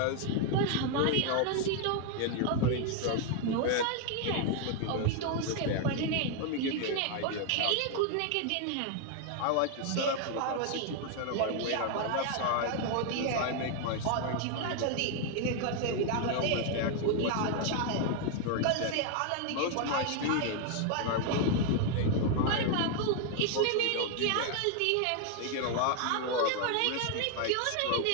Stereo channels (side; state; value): both; different; correlation 0.00